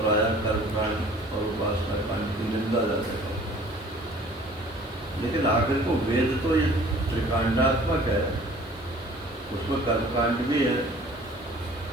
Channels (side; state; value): left; noise; hiss, 27 dB below the sound